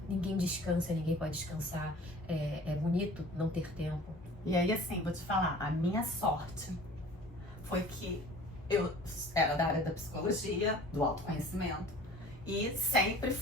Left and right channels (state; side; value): normal; both; correlation 0.46